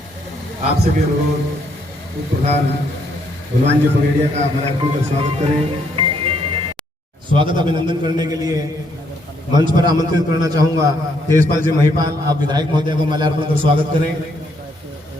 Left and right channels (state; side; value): normal; both; correlation 0.72